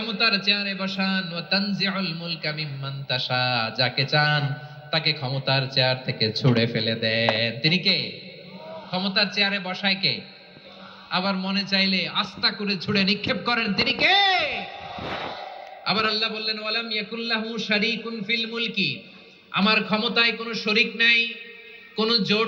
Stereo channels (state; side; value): identical; both; correlation 1.00